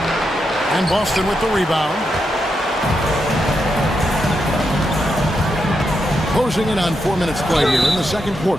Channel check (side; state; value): both; normal; correlation 0.84